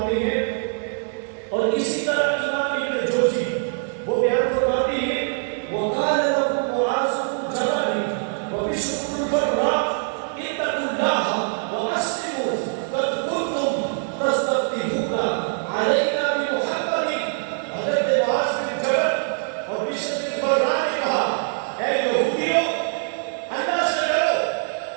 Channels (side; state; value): left; silent; digital silence